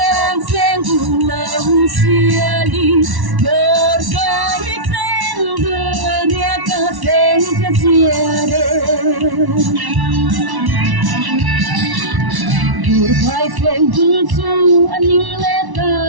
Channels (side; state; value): left; late; 1.1 ms